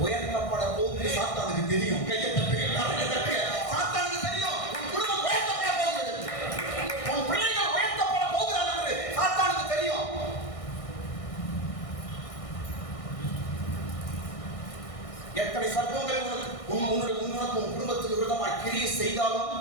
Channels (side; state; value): right; late; 1.6 ms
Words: உயர்த்தப்பட போகுது. சாத்தானுக்கு தெரியும். கையை தட்டுங்க. சாத்தானுக்கு தெரியும் உன் குடும்பம் உயர்த்தப்பட போகுது, உன் பிள்ளைகள் உயர்த்தப்பட போகிறாங்க. சாத்தானுக்கு தெரியும். எத்தனை சர்ப்பங்கள் உன்னுடைய உன் குடும்பத்துக்கு விரோதமாய் கிரியை செய்தாலும்